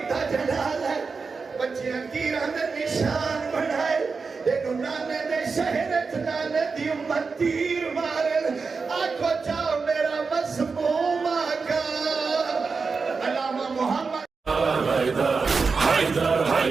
دا جلال ہے بچیاں تیران دے نشان بڑھائے دیکھو نانے دے شہرت نانے دی امت تیر مارل آنکھو چاہو میرا مسموم آقا علامہ محمد حیدر حیدر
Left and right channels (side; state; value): left; quieter; 4.7 dB